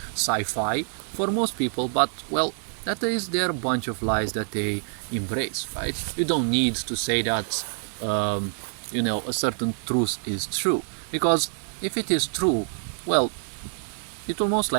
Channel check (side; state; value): left; silent; 59 dB below the other